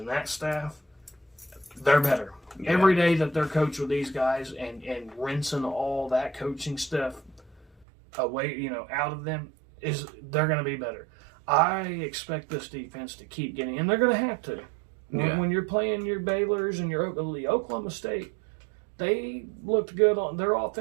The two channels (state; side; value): drops out; left; at 7.9 s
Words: that staff, they're better. Yeah. Every day that they're coached with these guys and rinsing all that coaching stuff away, out of them, they're going to be better. I expect this defense to keep getting, and they're going to have to. When you're playing your Baylors and your Oklahoma State, they looked good. Their